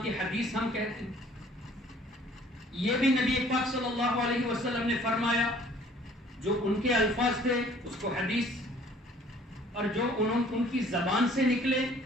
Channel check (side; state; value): both; normal; correlation 0.55